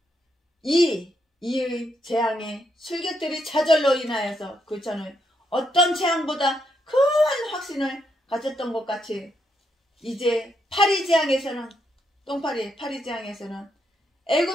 이 재앙의 술객들이 좌절로 인하여서 그처는 어떤 재앙보다 큰 확신을 가졌던 것 같이 이제 파리 재앙에서는 파리 재앙에서는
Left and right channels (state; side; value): normal; both; correlation 0.78